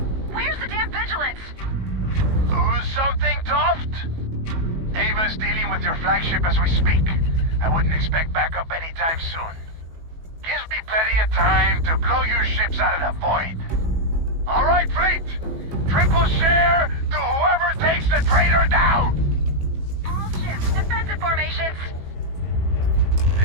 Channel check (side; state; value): left; late; 18 ms